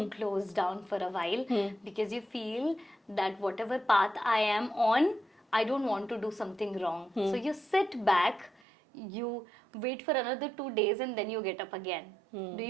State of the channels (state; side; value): drops out; left; at 8.6 s